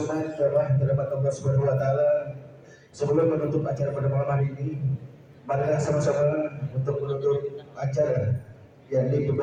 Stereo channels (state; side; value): identical; both; correlation 1.00